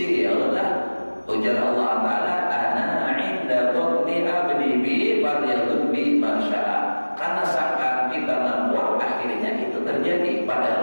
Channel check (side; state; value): both; inverted; correlation -1.00